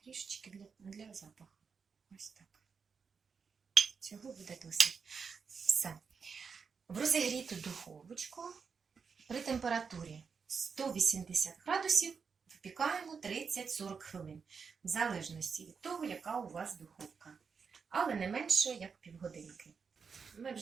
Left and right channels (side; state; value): left; quieter; 5.7 dB